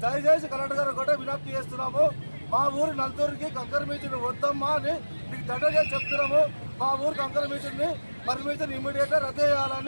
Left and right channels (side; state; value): both; inverted; correlation -1.00